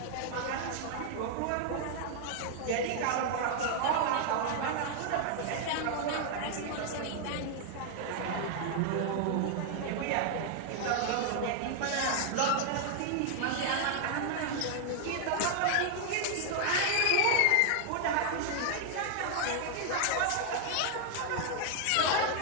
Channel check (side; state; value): both; different; correlation 0.00